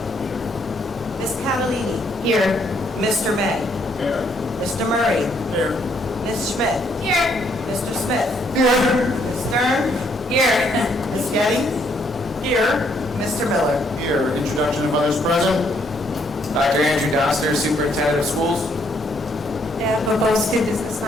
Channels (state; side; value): normal; both; correlation 0.70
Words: Ms. Catalini. Here. Mr. May. Here. Mr. Murray. Here. Ms. Schmidt. Here. Mr. Smith. Here. Ms. Stern. Here. Ms. Getty. Here. Mr. Miller. Here. Introduction of others present. Dr. Andrew Doster, Superintendent of Schools. And Boboski, Business